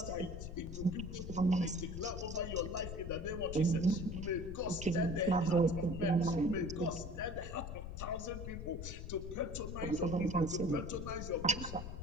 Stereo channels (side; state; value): left; noise; rumble, 7 dB below the sound